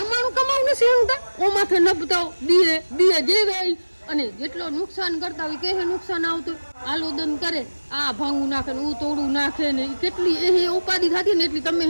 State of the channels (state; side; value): inverted; both; correlation -1.00